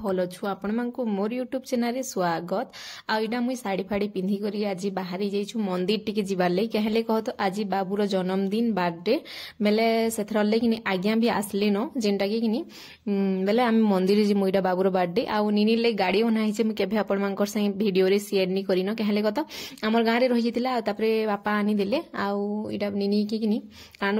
अछु। आपण मानको मोर यूट्यूब चैनल रे स्वागत। आ इडा मुई साड़ी फाड़ी पिंधी करी आज बाहरी जाइछु मंदिर टिके जिबार ले। कहले कह तो आज बाबूर जन्मदिन बर्थडे बेले सेथर ले किनी आज्ञा भी आसले न जेंटा के किनी बेले आमे मंदिर जे मुइडा बाबूर बर्थडे आ निनी ले गाड़ी बना हिचे मु केभे आपण मानकर संग वीडियो रे शेयर नी करिनो। कहले कह तो हमर गां रे रहि जितिला तापरे बापा आनी देले आ इडा निनी के किनी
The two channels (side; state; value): both; identical; correlation 1.00